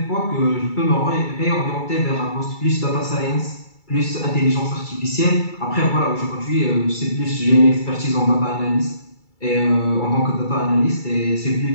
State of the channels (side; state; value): right; late; 2.3 ms